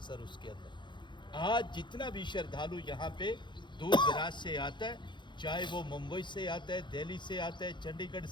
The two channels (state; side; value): late; right; 0.23 ms